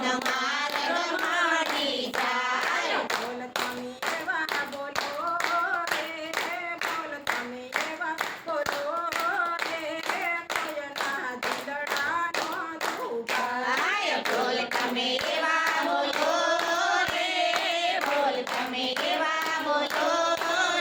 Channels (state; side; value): identical; both; correlation 1.00